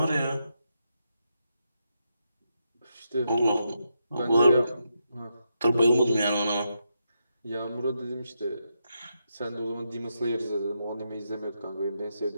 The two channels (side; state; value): both; inverted; correlation -0.83